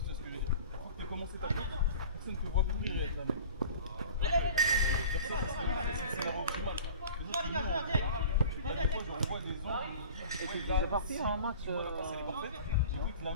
Tu peux commencer ta tête, personne ne te voit courir avec la main. C'est la optimale. On voit des angles. Et puis c'est parti en match. C'est parfait. La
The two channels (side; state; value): both; inverted; correlation -0.41